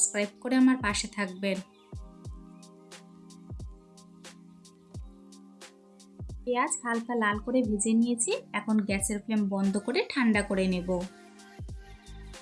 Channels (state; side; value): identical; both; correlation 1.00